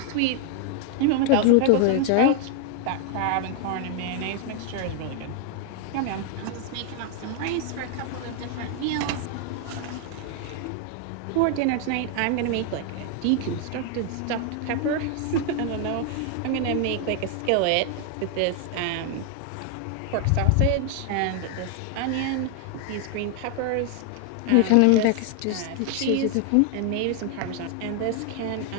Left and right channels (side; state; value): both; different; correlation 0.00